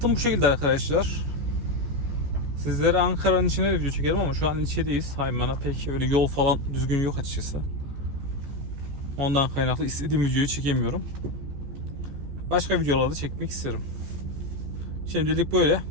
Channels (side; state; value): left; late; 14 ms